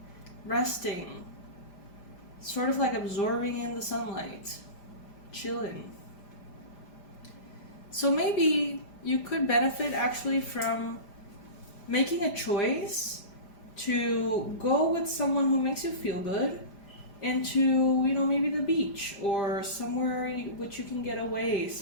resting, sort of like absorbing in the sunlight, chilling. So maybe you could benefit actually from making a choice to go with someone who makes you feel good into, maybe the beach or somewhere which you can get away,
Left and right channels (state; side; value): late; right; 5.0 ms